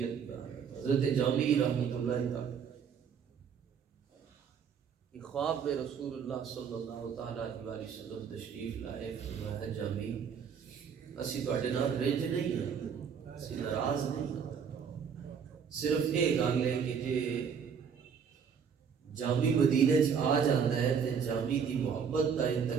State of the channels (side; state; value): left; quieter; 6.9 dB